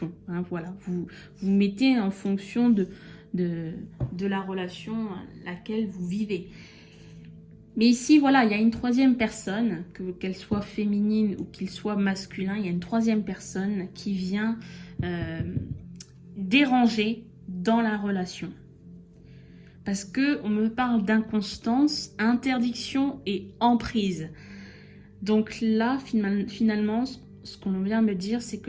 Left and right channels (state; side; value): identical; both; correlation 1.00